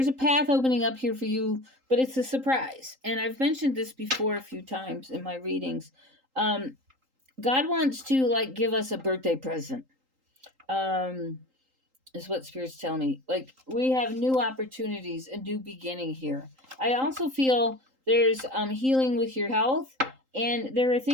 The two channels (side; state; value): left; late; 3.8 ms